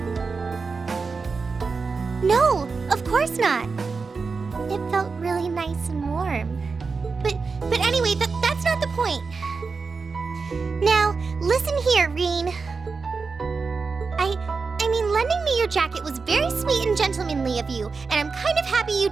No, of course not. It felt really nice and warm. But anyway, that's not the point. Now, listen here, Reen. I mean, lending me your jacket was very sweet and gentlemanly of you, and I'm kind of happy you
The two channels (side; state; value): left; quieter; 4.7 dB